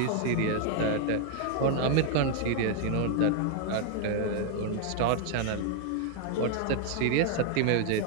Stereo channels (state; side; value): different; both; correlation 0.00